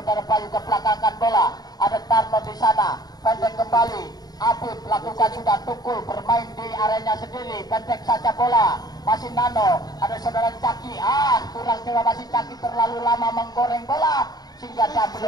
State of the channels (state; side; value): late; right; 0.19 ms